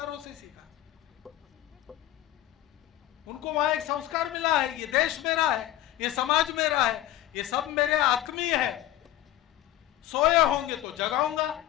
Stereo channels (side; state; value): right; quieter; 13.6 dB